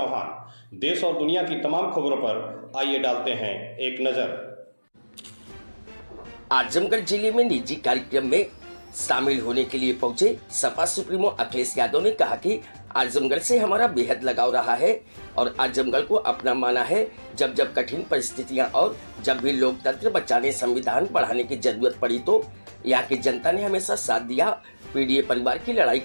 देश और दुनिया की तमाम खबरों पर आइए डालते हैं एक नजर। आजमगढ़ जिले में निजी कार्यक्रम में शामिल होने के लिए पहुंचे सपा सुप्रीमो अखिलेश यादव ने कहा कि आजमगढ़ से हमारा बेहद लगाव रहा है और आजमगढ़ को अपना माना है। जब जब कठिन परिस्थितियां और जब भी लोकतंत्र बचाने, संविधान बढ़ाने की जरूरत पड़ी तो यहाँ की जनता ने हमेशा साथ दिया। पीडीए परिवार की लड़ाई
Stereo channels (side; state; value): both; inverted; correlation -1.00